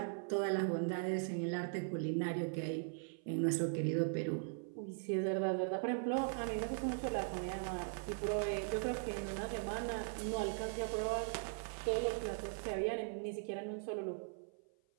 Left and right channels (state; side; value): silent; left; 51 dB below the other